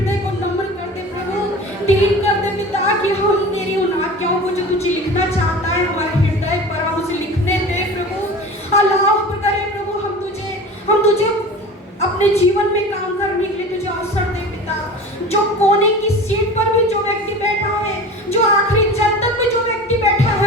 को नम्र कर दे प्रभु, दीन कर दे पिता, कि हम तेरी उन आज्ञाओं को जो तुझे लिखना चाहता है हमारे हृदय पर हम उसे लिखने दे प्रभु। अल्लाह करे प्रभु, हम तुझे अपने जीवन में काम करने के लिए तुझे अवसर दे पिता। जो कोने की सीट पर भी जो व्यक्ति बैठा है, जो आखिरी जल तक भी जो व्यक्ति बैठा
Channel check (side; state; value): both; normal; correlation 0.36